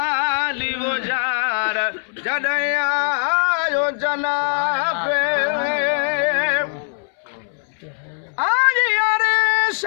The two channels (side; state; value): right; silent; 65 dB below the other